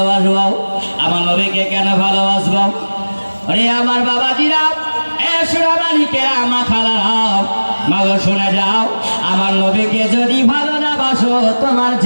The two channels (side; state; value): both; inverted; correlation -1.00